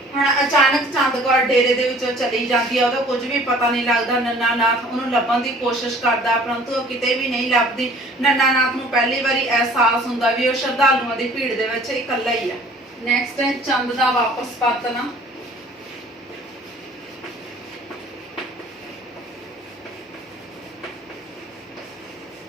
ਹੁਣ ਅਚਾਨਕ ਚੰਦ ਕੌਰ ਡੇਰੇ ਦੇ ਵਿੱਚੋਂ ਚਲੀ ਜਾਂਦੀ ਆ, ਉਹਦਾ ਕੁਝ ਵੀ ਪਤਾ ਨਹੀਂ ਲੱਗਦਾ। ਨੰਨਾ ਨਾਥ ਉਹਨੂੰ ਲੱਭਣ ਦੀ ਕੋਸ਼ਿਸ਼ ਕਰਦਾ ਪਰੰਤੂ ਉਹ ਕਿਤੇ ਵੀ ਨਹੀਂ ਲੱਭਦੀ। ਨੰਨਾ ਨਾਥ ਨੂੰ ਪਹਿਲੀ ਵਾਰੀ ਅਹਿਸਾਸ ਹੁੰਦਾ ਵੀ ਉਹ ਸ਼ਰਧਾਲੂਆਂ ਦੀ ਭੀੜ ਦੇ ਵਿੱਚ ਇਕੱਲਾ ਹੀ ਆ। ਨੈਕਸਟ ਹੈ ਚੰਦ ਦਾ ਵਾਪਸ ਪਰਤਣਾ।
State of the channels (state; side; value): normal; both; correlation 0.51